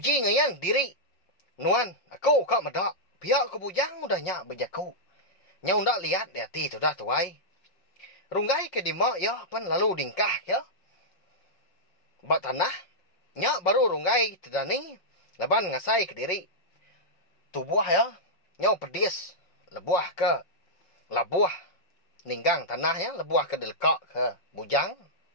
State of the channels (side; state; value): right; late; 5.5 ms